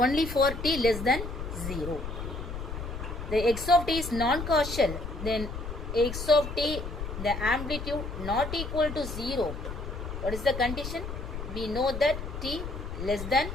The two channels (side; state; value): left; noise; rumble, 7 dB below the sound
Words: for t less than 0. The x of t is non-causal, then x of t the amplitude not equal to 0. What is the condition? We know that t less than